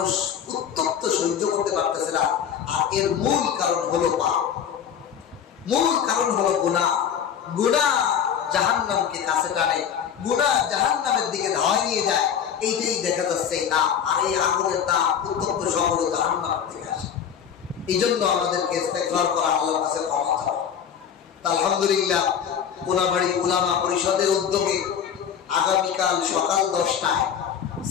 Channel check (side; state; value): right; quieter; 8.3 dB